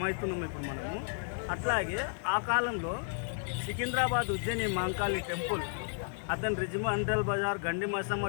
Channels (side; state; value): right; silent; digital silence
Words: అవుతున్నాం ఇప్పుడు మనము. అట్లాగే ఆ కాలంలో సికింద్రాబాద్ ఉజ్జయిని మాంకాళి టెంపుల్, అతని రిజిమండల్ బజార్ గండి